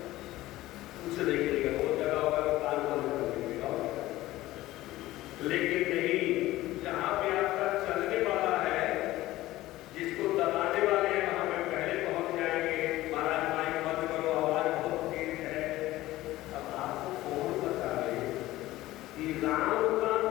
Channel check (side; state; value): right; quieter; 16.7 dB